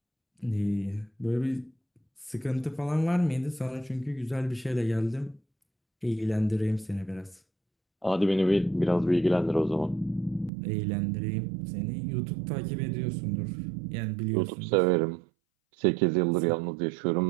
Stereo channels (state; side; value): drops out; left; at 10.5 s